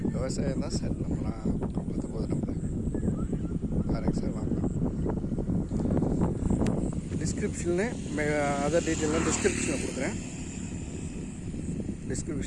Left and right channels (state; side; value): identical; both; correlation 1.00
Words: விவசாயம் தான் சார் நம்மளாம் பார்த்து போகுது. நம்ம பாருங்க சார், வாங்கலாம். டிஸ்கிரிப்ஷனில் அதர் டீட்டெயிலாம் டிஸ்கிரிப்ஷனில் கொடுக்குறேன்.